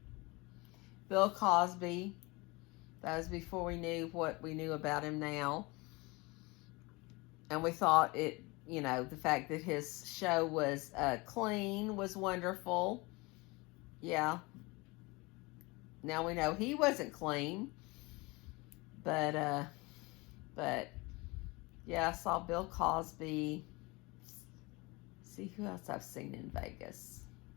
Bill Cosby. That was before we knew what we knew about him now. And we thought the fact that his show was clean was wonderful. Yeah. Now we know he wasn't clean. But yeah, I saw Bill Cosby. See who else I've seen in Vegas.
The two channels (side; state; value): right; quieter; 24.9 dB